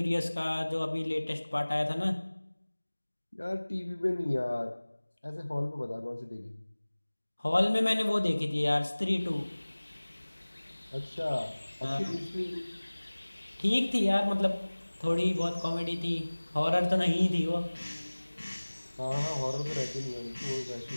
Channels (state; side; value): inverted; both; correlation -1.00